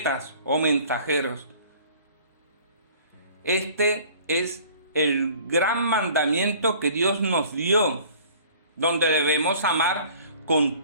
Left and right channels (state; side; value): inverted; both; correlation -0.50